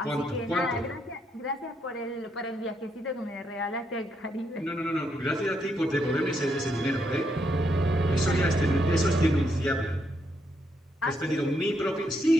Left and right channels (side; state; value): both; normal; correlation 0.77